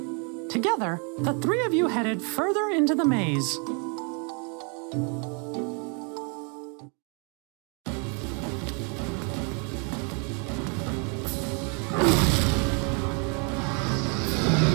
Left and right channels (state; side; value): quieter; left; 36.5 dB